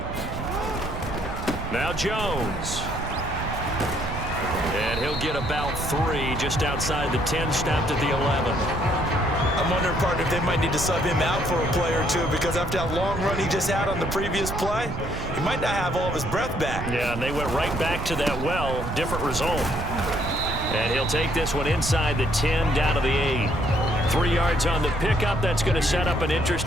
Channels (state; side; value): noise; right; rumble, 6 dB below the sound